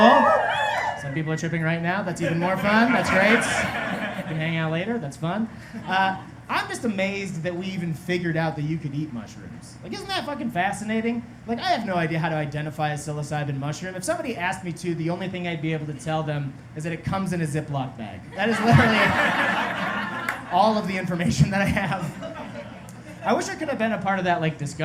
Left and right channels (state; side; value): identical; both; correlation 1.00